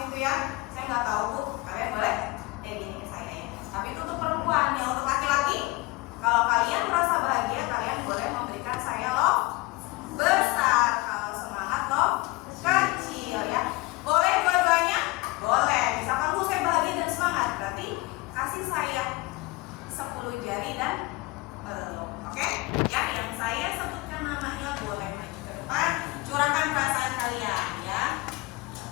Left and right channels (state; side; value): quieter; right; 22.8 dB